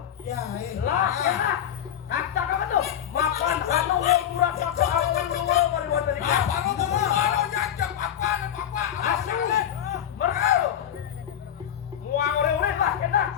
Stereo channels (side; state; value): right; quieter; 10.0 dB